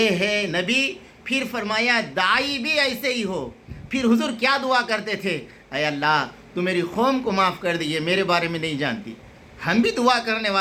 है नबी। फिर फरमाया दाई भी ऐसे ही हो। फिर हुजूर क्या दुआ करते थे, अय अल्लाह तू मेरी कौम को माफ़ कर दी, ये मेरे बारे में नहीं जानती। हम भी दुआ करने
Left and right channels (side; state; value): both; identical; correlation 1.00